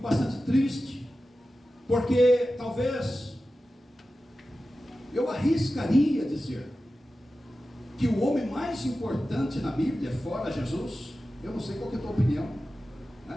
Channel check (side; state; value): both; normal; correlation 0.94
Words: bastante triste, porque talvez eu arriscaria dizer que o homem mais importante na Bíblia, fora Jesus, eu não sei qual que é a tua opinião,